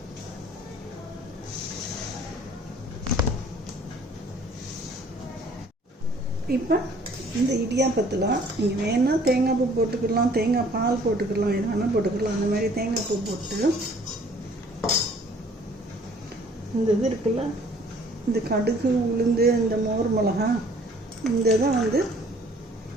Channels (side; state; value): both; normal; correlation 0.56